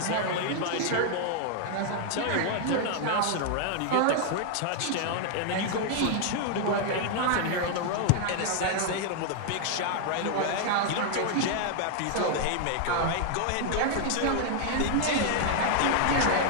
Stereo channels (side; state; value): both; different; correlation 0.00